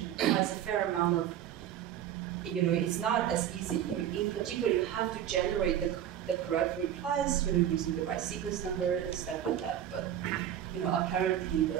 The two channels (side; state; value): left; quieter; 10.5 dB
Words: requires a fair amount of, it's not as easy. In particular, you have to generate the correct replies, using the right sequence number and stuff like that. But, apparently